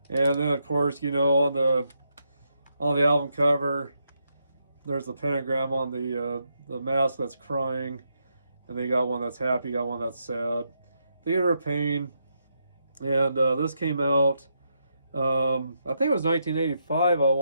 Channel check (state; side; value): inverted; both; correlation -0.80